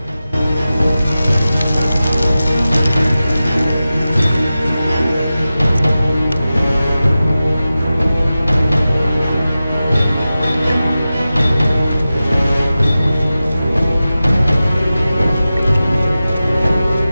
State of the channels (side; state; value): both; inverted; correlation -0.94